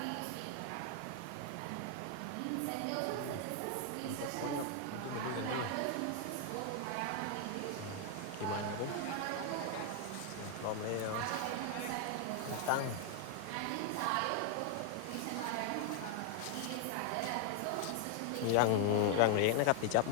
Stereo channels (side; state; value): both; different; correlation 0.00